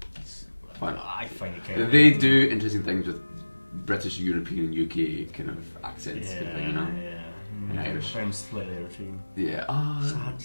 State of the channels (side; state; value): both; inverted; correlation -1.00